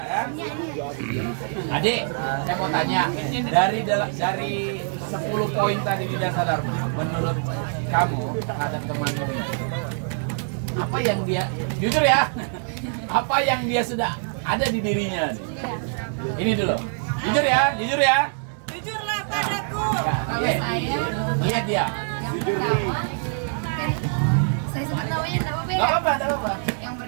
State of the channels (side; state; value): left; silent; 62 dB below the other